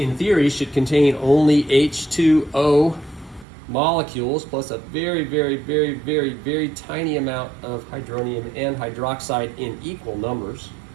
theory should contain only H2O molecules plus a very, very, very, very, very tiny amount of hydronium and hydroxide in equal numbers.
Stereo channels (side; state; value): left; drops out; at 3.5 s